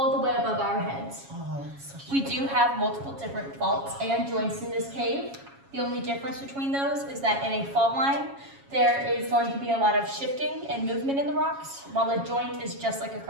the way above our heads. Oh, that's such We do have multiple different faults and joints in this cave. The only difference between those is that in a fault line, there is going to be a lot of shifting and movement in the rocks, while a joint is just like a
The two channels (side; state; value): left; late; 7.3 ms